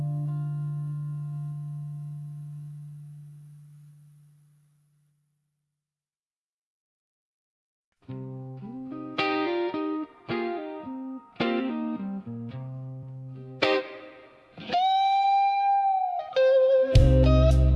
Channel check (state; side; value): identical; both; correlation 1.00